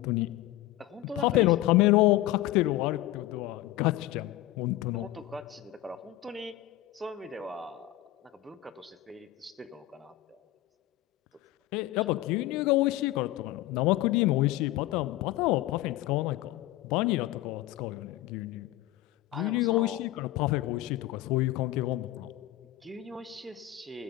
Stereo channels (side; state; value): right; quieter; 15.7 dB